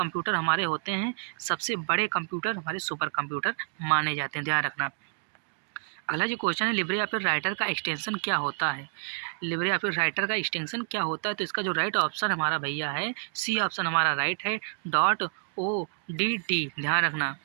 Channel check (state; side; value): silent; left; digital silence